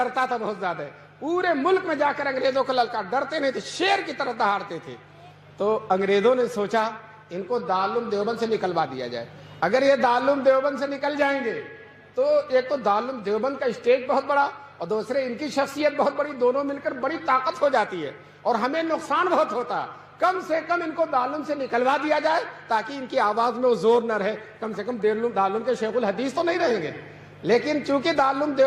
تھا بہت زیادہ, پورے ملک میں جا کر انگریزوں کو للکار, ڈرتے نہیں تھے, شیر کی طرح دہاڑتے تھے. تو انگریزوں نے سوچا ان کو دارالعلوم دیوبند سے نکلوا دیا جائے. اگر یہ دارالعلوم دیوبند سے نکل جائیں گے تو ایک تو دارالعلوم دیوبند کا اسٹیج بہت بڑا اور دوسرے ان کی شخصیت بہت بڑی, دونوں مل کر بڑی طاقت ہو جاتی ہے اور ہمیں نقصان بہت ہوتا. کم سے کم ان کو دارالعلوم سے نکلوا دیا جائے تاکہ ان کی آواز میں وہ زور نہ رہے. کم سے کم دارالعلوم کے شیخ الحدیث تو نہیں رہیں گے. لیکن چونکہ دارالعلوم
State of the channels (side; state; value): both; identical; correlation 1.00